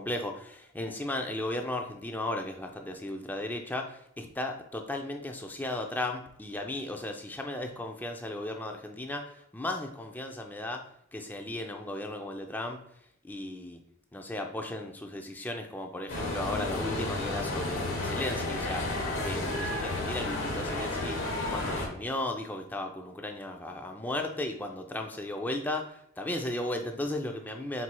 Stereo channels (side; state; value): both; normal; correlation 0.43